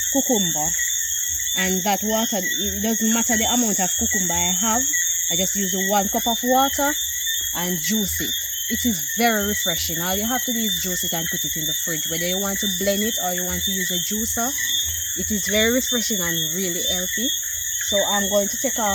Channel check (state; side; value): identical; both; correlation 1.00